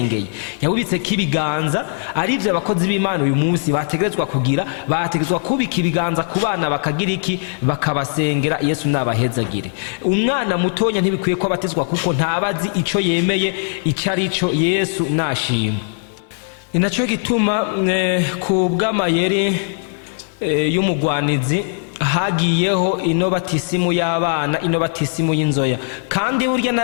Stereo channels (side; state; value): right; silent; 56 dB below the other